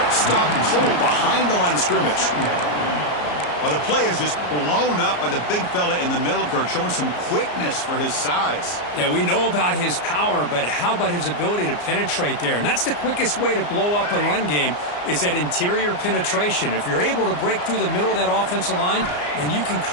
Stopped cold behind the line of scrimmage. Well, the play is just blown up by the big fella in the middle, Kirk, showing some quickness for his size. Yeah, we know about his power, but how about his ability to penetrate there? And that's the quickest way to blow up a run game, is that interior penetration. If you're able to break through the middle of that offensive line, then you can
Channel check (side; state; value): right; late; 34 ms